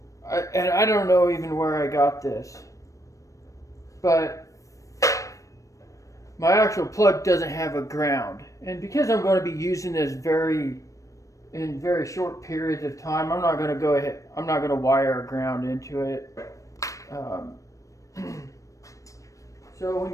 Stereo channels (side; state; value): right; late; 0.16 ms